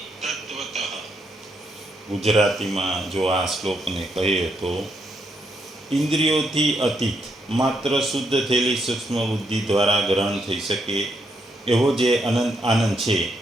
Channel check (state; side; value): normal; both; correlation 0.77